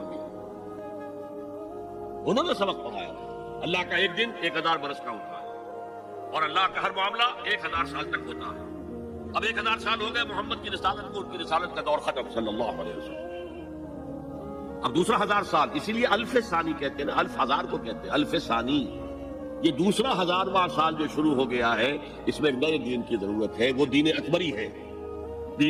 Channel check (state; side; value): identical; both; correlation 1.00